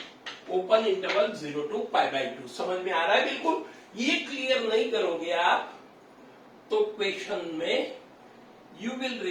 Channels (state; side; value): identical; both; correlation 1.00